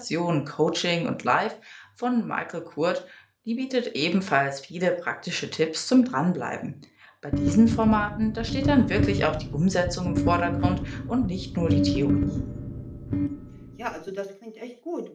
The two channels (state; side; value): identical; both; correlation 1.00